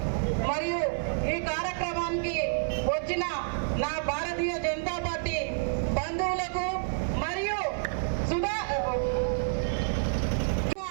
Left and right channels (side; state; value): left; silent; 59 dB below the other